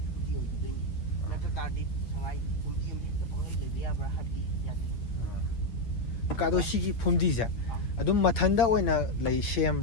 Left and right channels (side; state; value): right; late; 8.8 ms